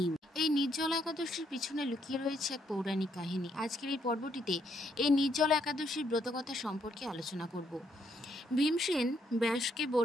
এই নির্জলা একাদশীর পিছনে লুকিয়ে রয়েছে এক পৌরাণিক কাহিনী। আজকের এই পর্বটিতে এই নির্জলা একাদশীর ব্রতকথা সম্পর্কে আলোচনা করব। ভীমসেন ব্যাসকে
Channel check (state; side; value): normal; both; correlation 0.73